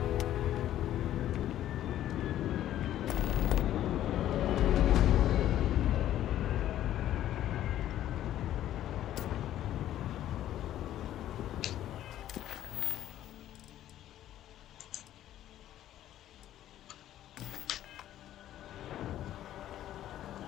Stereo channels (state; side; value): quieter; right; 12.4 dB